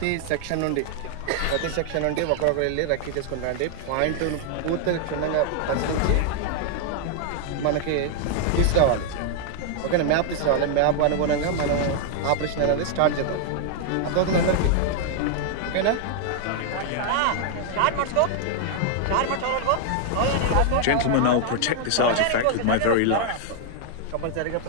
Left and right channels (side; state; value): both; different; correlation 0.00